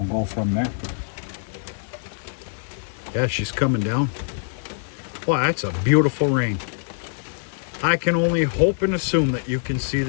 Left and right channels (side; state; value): right; silent; digital silence